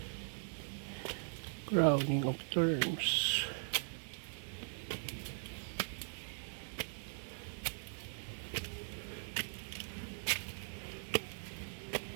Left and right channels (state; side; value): silent; left; digital silence